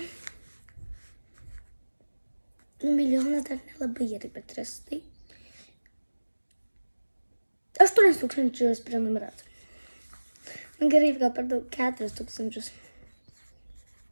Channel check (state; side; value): inverted; both; correlation -1.00